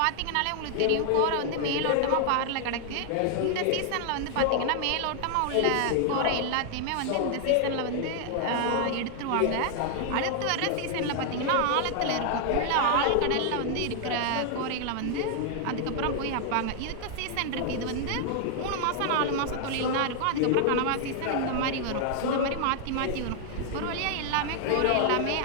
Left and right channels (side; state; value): both; different; correlation 0.00